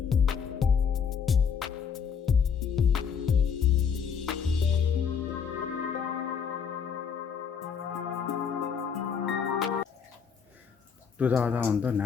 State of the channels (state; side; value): quieter; right; 6.8 dB